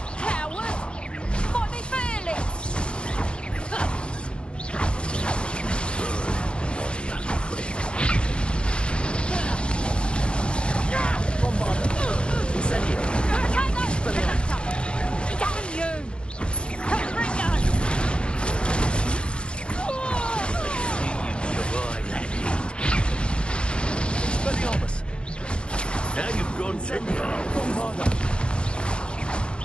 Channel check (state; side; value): late; right; 0.055 ms